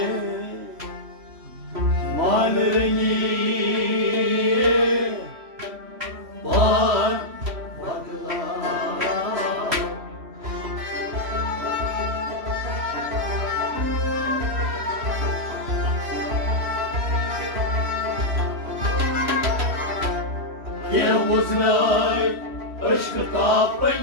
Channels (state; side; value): late; left; 3.1 ms